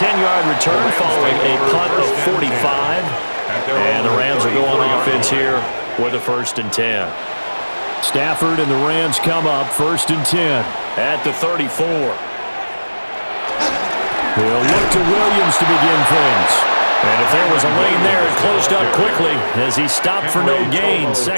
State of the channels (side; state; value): both; inverted; correlation -1.00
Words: return following a punt of 45. And the Rams will go on offense here with a 1st and 10. Stafford and the Rams come up 1st and 10 at the 34. They'll look to Williams to begin things. And if there was a lane there, it closed up quickly as he stopped for no gain.